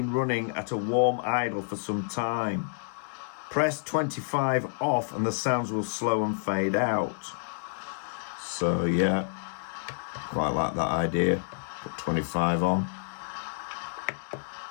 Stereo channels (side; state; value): right; silent; 58 dB below the other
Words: running at a warm idle for some time. Press 25 off and the sounds will slow and fade out. So yeah, quite like that idea. Put 25 on.